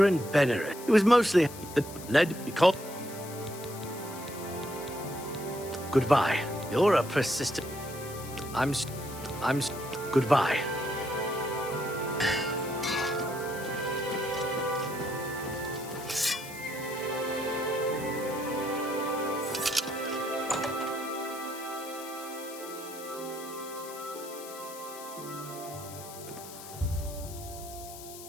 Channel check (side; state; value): left; noise; hiss, 14 dB below the sound